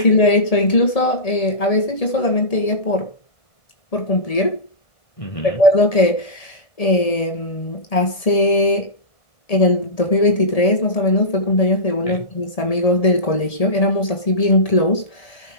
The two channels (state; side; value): late; right; 1.7 ms